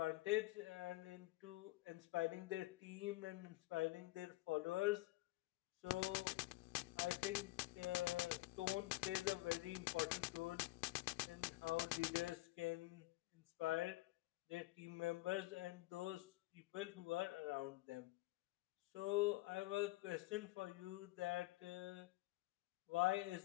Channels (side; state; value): right; quieter; 19.4 dB